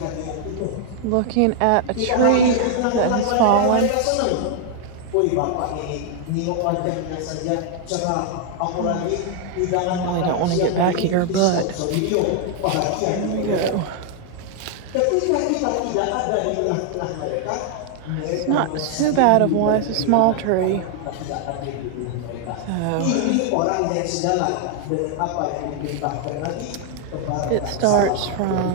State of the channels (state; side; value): different; both; correlation 0.00